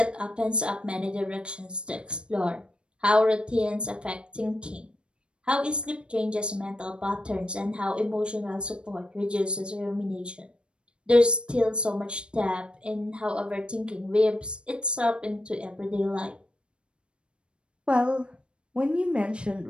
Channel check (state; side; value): late; left; 0.056 ms